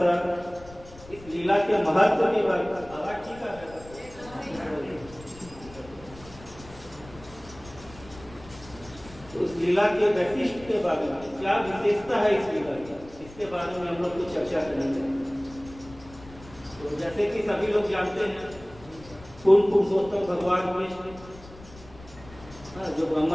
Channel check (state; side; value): noise; left; rumble, 19 dB below the sound